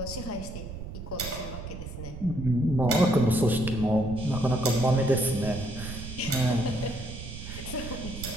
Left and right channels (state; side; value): noise; right; rumble, 9 dB below the sound